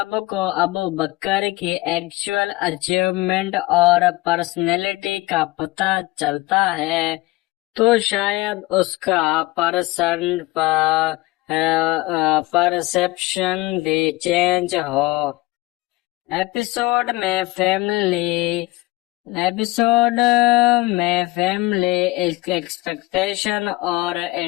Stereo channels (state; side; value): quieter; right; 20.7 dB